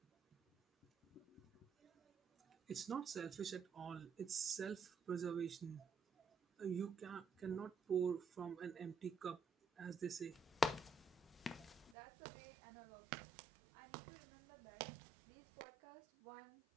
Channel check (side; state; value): left; drops out; at 12.0 s